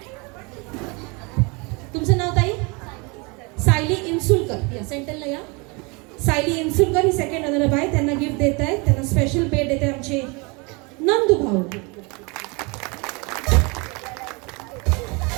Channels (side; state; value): left; quieter; 29.3 dB